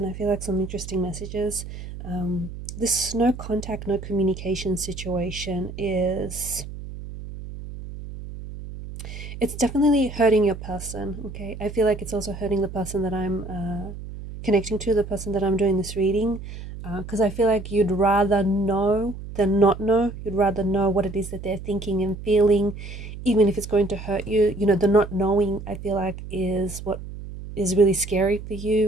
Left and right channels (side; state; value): right; noise; hum, 11 dB below the sound